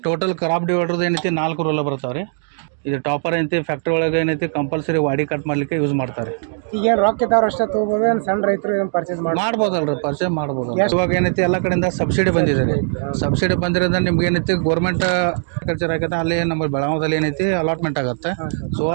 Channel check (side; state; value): left; silent; digital silence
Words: ಟೋಟಲ್ ಕ್ರಾಪ್ ಡಿವೈಡರ್ದು ಏನೈತಿ 4 ರೂಲ ಬರ್ತಾವೆ ರೀ. ಇದು ಟಾಪರ್ ಏನೈತಿ ಫ್ಯಾಕ್ಟ್ರಿ ಒಳಗೆ ಏನೈತಿ ಕಂಪಲ್ಸರಿ ವಾಡಿ ಕಟ್ ಮಾಡ್ಲಿಕ್ಕೆ ಯೂಸ್ ಮಾಡ್ತಾರೆ. ಈಗ ರೊಕ್ಕ ಇದ್ದವ್ರು ಅಷ್ಟೇ ತಗೋಬೋದು, ಸಣ್ಣ ರೈತರು ಪರ್ಚೇಸ್ ಮಾಡ್ಬೋದಲ್ರಿ, ಪರ್ಚೇಸ್ ಮಾಡ್ಬೋದು. ಇವಾಗ ಏನೈತಿ ಎಲ್ಲ ಕಡೆಯಿಂದ ಸಬ್ಸಿಡಿ ಬಂದಿದೆ ರೀ. ಸಬ್ಸಿಡಿ ಬಂದಿರೋದ್ರಿಂದ ನಿಮ್ಗೆ ಏನೈತಿ ಗೌರ್ಮೆಂಟ್ ಕಲ್ಚರ್ ಆಗತ್ತೆ, ಅಲ್ಲಿ ನಮ್ಮ ಬೆಳಗಾವದಲ್ಲಿ ಏನೈತಿ ಅಲಾಟ್ಮೆಂಟ್ ಆಗುತ್ತೆ. ಸೊ